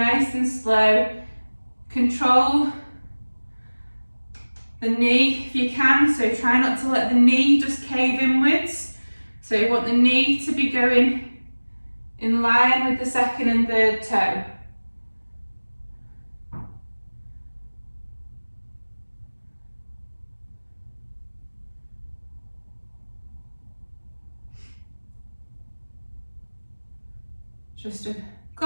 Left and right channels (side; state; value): both; inverted; correlation -1.00